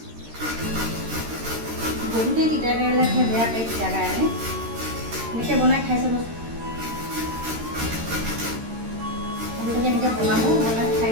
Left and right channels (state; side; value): late; left; 13 ms